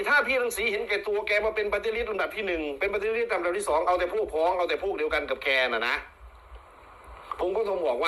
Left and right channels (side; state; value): both; identical; correlation 1.00